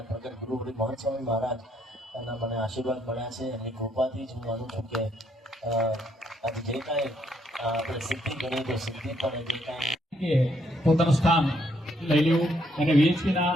પ્રગટ ગુરુ મહંત સ્વામી મહારાજ એના મને આશીર્વાદ મળ્યા છે, એમની કૃપાથી જ હું માનું છું કે આજે જે કાંઈ આપણે સિદ્ધિ ગણીએ તો સિદ્ધિ પણ જે કાંઈ પોતાનું સ્થાન લઈ લેવું અને VHPના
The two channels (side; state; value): both; normal; correlation 0.73